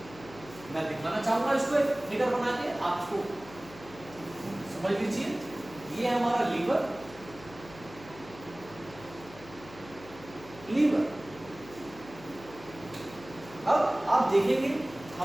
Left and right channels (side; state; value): left; noise; hum, 18 dB below the sound